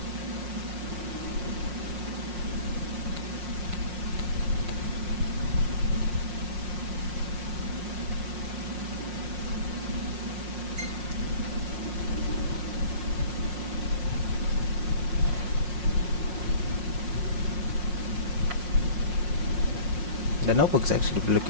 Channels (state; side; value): late; left; 5.6 ms